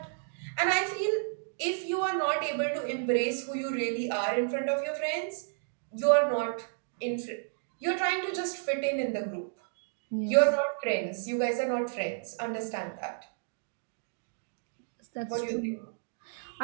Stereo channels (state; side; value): silent; left; digital silence